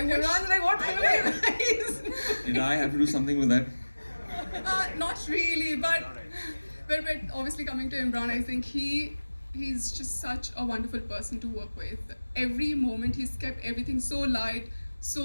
wish... Everyone's like, what film are you guys? Did I have to do something with that? Not really, but obviously coming to Imran, I think he's just such a wonderful person to work with. Every moment he's kept everything so light,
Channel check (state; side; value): inverted; both; correlation -1.00